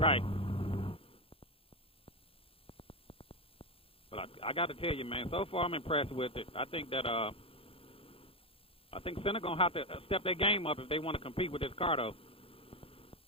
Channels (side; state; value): right; late; 0.27 ms